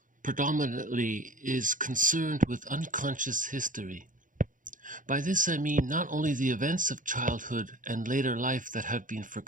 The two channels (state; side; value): late; left; 0.38 ms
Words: predominantly is concerned with unconscious history. By this I mean not only the events of childhood and later life that have been